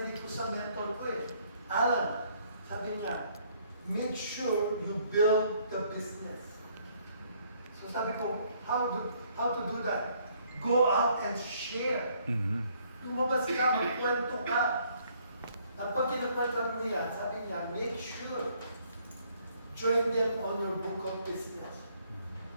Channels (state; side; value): inverted; both; correlation -0.65